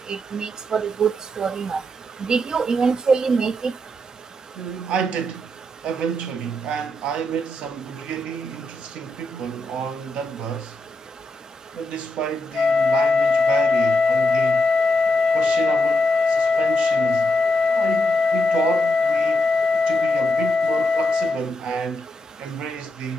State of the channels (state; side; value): normal; both; correlation 0.82